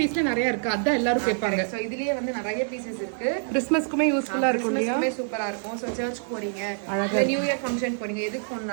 நிறைய இருக்கு, அதான் எல்லாரும் கேட்பாங்க. சோ இதுலயே வந்து நிறைய பீசஸ் இருக்கு. கிறிஸ்மஸ்க்குமே யூஸ்ஃபுல்லா இருக்கும் இல்லையா? கிறிஸ்மஸ்க்குமே சூப்பரா இருக்கும். சோ சர்ச் போறீங்க, இல்ல நியூ இயர் ஃபங்க்ஷன் போறீங்க, எதுக்கு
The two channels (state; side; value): silent; left; digital silence